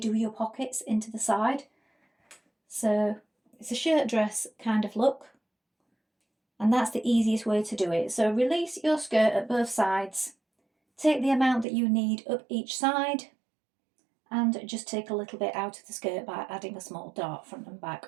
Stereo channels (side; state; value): left; drops out; at 11.7 s